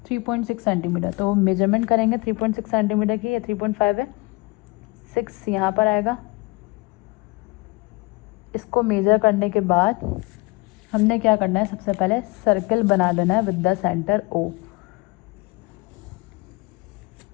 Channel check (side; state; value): right; quieter; 24.5 dB